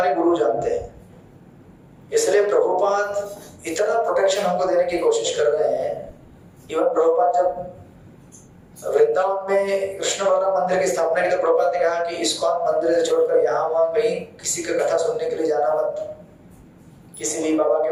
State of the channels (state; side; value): identical; both; correlation 1.00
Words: गुरु जानते हैं। इसलिए प्रभुपाद इतना प्रोटेक्शन हमको देने की कोशिश कर रहे हैं। इवन प्रभुपाद जब वृंदावन में कृष्ण बलराम मंदिर की स्थापना की तो प्रभुपाद ने कहा कि इस्कॉन मंदिर से छोड़कर यहाँ वहां कहीं किसी का कथा सुनने के लिए जाना मत, किसी भी बाबा के